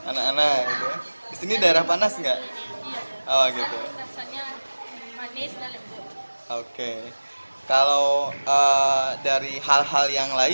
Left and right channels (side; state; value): both; inverted; correlation -1.00